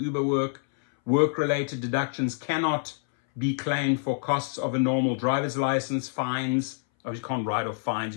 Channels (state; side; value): silent; right; 60 dB below the other